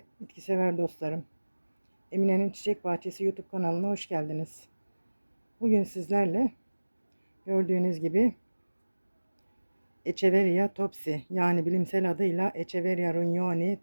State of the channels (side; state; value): both; inverted; correlation -1.00